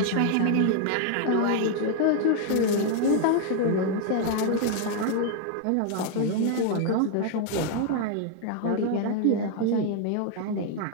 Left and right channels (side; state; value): both; different; correlation 0.00